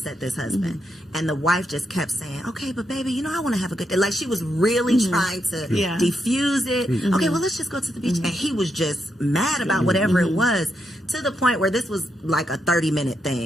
this husband. And the wife just kept saying, okay, but baby, you know, I want to have a good day. Like, she was really trying to diffuse it. Okay, well, let's just go to the beach. And he was just mad about whatever it was, to the point where this was like a 30-minute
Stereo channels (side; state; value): both; normal; correlation 0.82